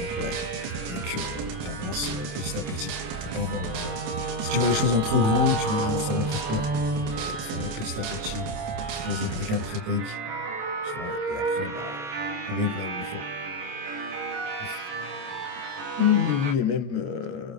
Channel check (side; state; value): left; late; 27 ms